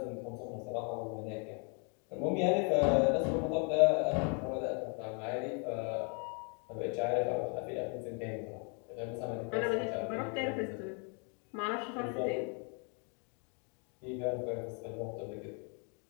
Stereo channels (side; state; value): right; quieter; 36.8 dB